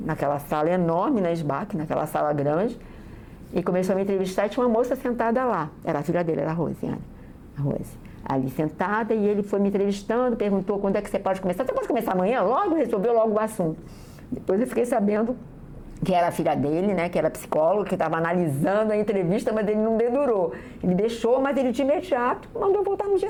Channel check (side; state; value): both; identical; correlation 1.00